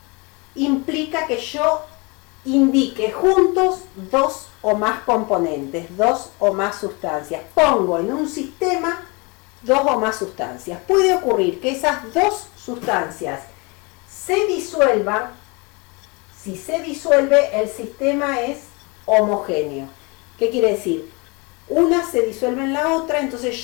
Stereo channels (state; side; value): quieter; right; 28.9 dB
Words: implica que yo indique juntos dos o más componentes, dos o más sustancias. Pongo en un sistema dos o más sustancias. Puede ocurrir que esas dos sustancias se disuelvan. Si se disuelve, el sistema es homogéneo. ¿Qué quiere decir? Una se disuelve en la otra, entonces